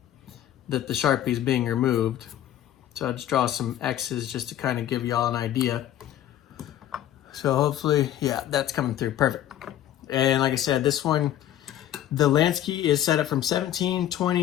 that the Sharpie is being removed. So I'll just draw some X's just to kind of give y'all an idea. So hopefully, yeah, that's coming through, perfect. And like I said, this one, the Lansky is set up from 17,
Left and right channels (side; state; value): right; quieter; 11.9 dB